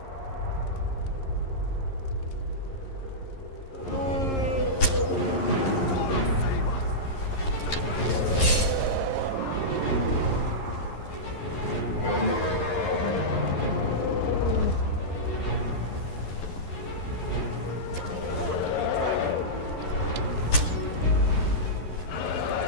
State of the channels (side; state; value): right; late; 11 ms